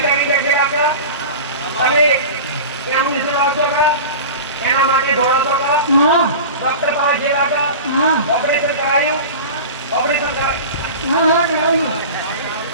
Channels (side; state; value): both; inverted; correlation -0.33